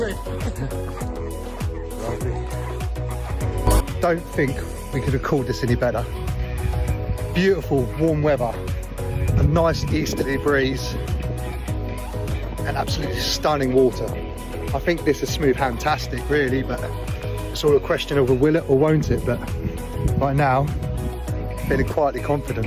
Don't think we could have called this any better. Beautiful warm weather, a nice easterly breeze, and absolutely stunning water. I think this is smooth-fantastic, really, but it's all a question of will it or won't it. But right now, feeling quietly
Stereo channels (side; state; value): both; identical; correlation 1.00